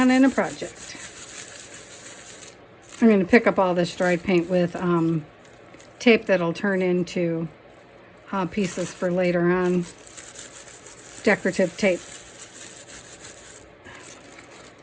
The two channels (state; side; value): identical; both; correlation 1.00